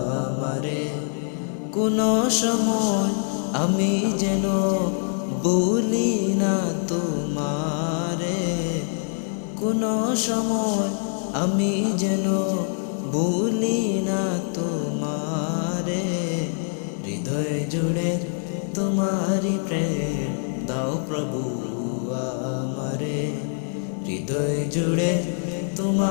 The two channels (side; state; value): right; silent; digital silence